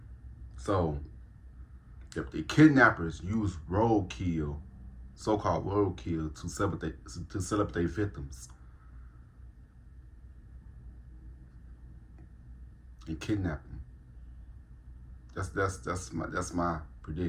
So, if the kidnappers use roadkill, so-called roadkill, to set up their victims and kidnap them, that's my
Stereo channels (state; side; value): identical; both; correlation 1.00